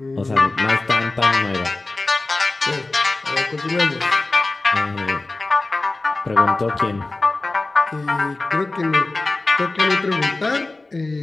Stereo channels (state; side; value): quieter; right; 3.2 dB